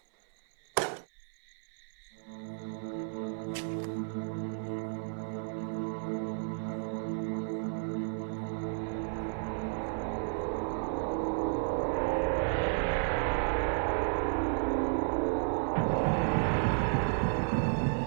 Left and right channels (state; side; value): silent; left; 56 dB below the other